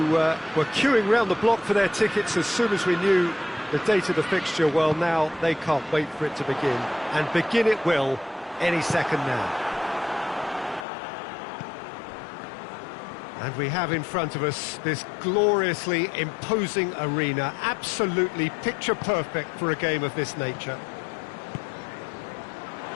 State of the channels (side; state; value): right; drops out; at 10.9 s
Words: were queuing round the block for their tickets as soon as we knew the date of the fixture, well, now they can't wait for it to begin. And begin it will any second now. And we have in front of us this gloriously imposing arena, absolutely picture perfect for a game of this nature.